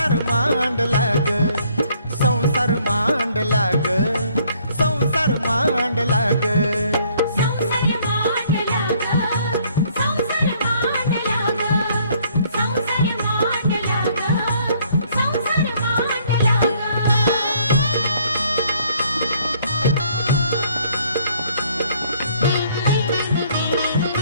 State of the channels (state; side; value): inverted; both; correlation -0.63